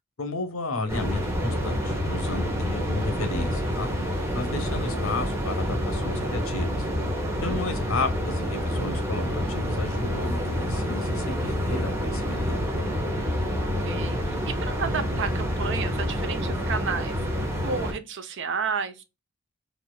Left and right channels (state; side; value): normal; both; correlation 0.59